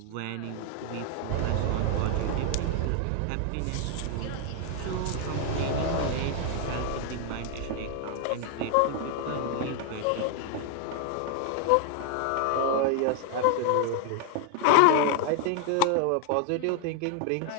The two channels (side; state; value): both; different; correlation 0.00